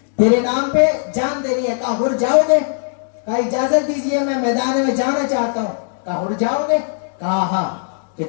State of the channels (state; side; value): silent; right; digital silence